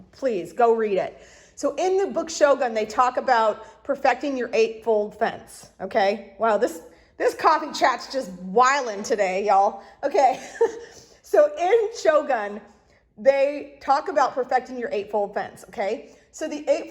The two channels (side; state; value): both; identical; correlation 1.00